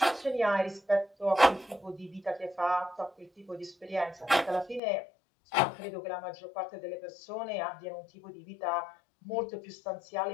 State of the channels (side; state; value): right; drops out; at 4.8 s